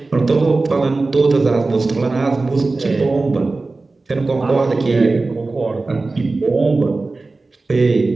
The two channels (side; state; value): left; quieter; 3.5 dB